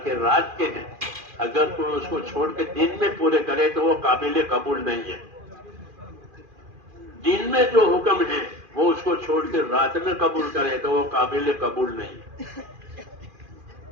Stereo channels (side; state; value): left; late; 2.4 ms